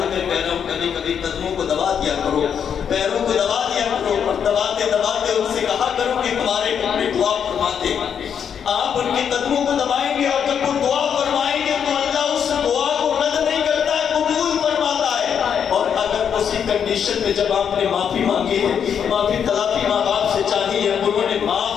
کر کہہ رہا ہوں، کبھی کبھی قدموں کو دبا دیا کرو، پیروں کو دبا دیا کرو، اور دباتے دباتے ان سے کہا کرو کہ تمہارے ٹکڑے دعا فرماتے۔ آپ ان کے قدموں کو دبائیں گے اور جب وہ دعا فرمائیں گے تو اللہ اس دعا کو رد نہیں کرتا ہے، قبول فرماتا ہے۔ اور اگر اسی کنڈیشن میں جب آپ نے معافی مانگی ہے، معافی تلافی ماں باپ سے چاہی ہے، انہوں نے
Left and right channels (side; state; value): right; quieter; 7.8 dB